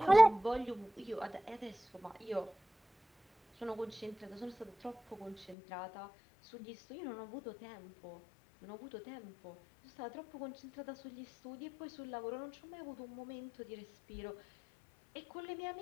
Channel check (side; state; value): right; drops out; at 5.6 s